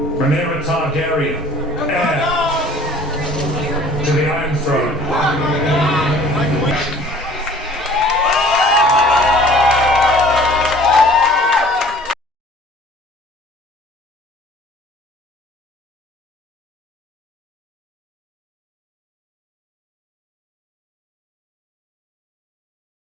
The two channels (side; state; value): both; normal; correlation 0.50